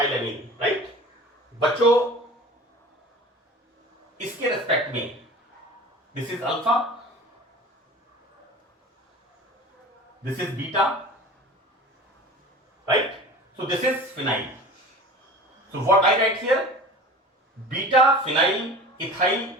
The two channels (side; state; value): both; normal; correlation 0.39